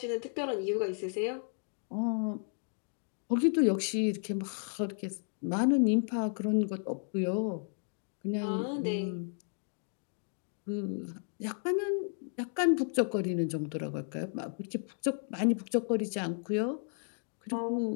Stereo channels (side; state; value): right; silent; 56 dB below the other